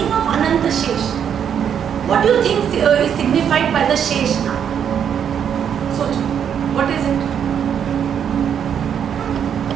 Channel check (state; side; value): quieter; left; 8.3 dB